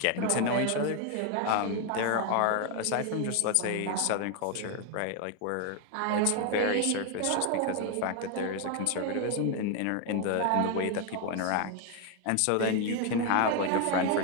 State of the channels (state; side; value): different; both; correlation 0.01